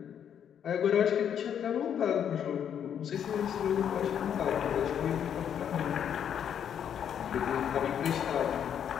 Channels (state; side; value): quieter; right; 8.8 dB